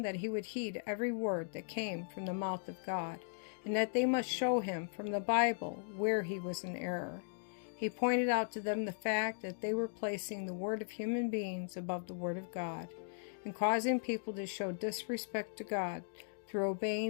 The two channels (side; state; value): right; silent; digital silence